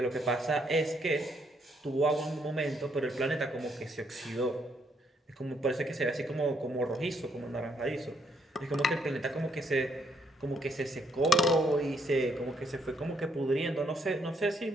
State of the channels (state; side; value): normal; both; correlation 0.72